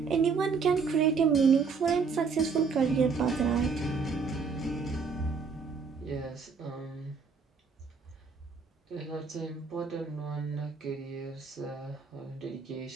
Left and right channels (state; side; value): quieter; left; 5.1 dB